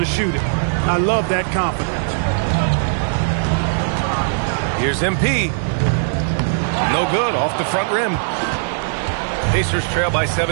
shoot it. I love that confidence. Here's MP. No good, off the front rim. Pacers trail by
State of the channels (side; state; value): left; silent; digital silence